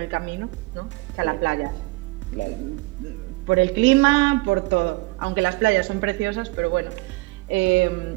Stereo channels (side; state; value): left; quieter; 23.6 dB